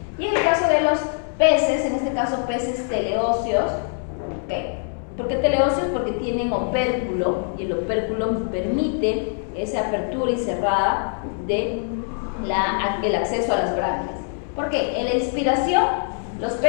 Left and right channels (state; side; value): silent; right; 59 dB below the other